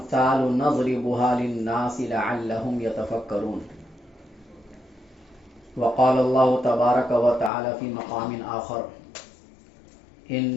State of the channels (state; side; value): drops out; right; at 7.5 s